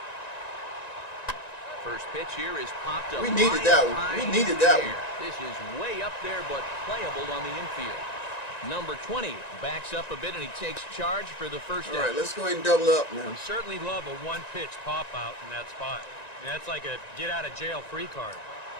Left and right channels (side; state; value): right; late; 1.9 ms